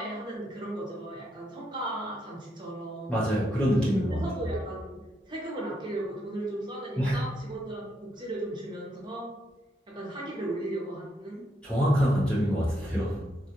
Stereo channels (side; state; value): both; normal; correlation 0.78